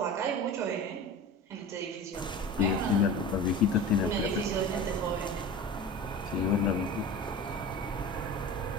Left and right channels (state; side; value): normal; both; correlation 0.34